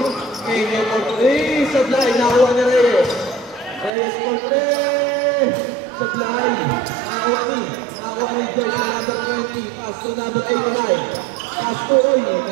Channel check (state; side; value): drops out; left; at 3.9 s